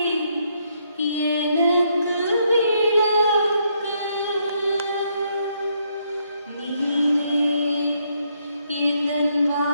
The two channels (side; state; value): both; inverted; correlation -0.73